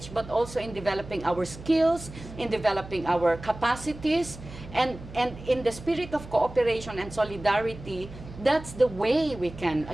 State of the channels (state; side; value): noise; right; hum, 15 dB below the sound